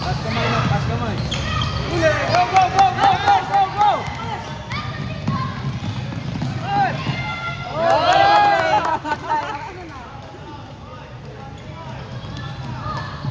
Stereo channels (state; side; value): identical; both; correlation 1.00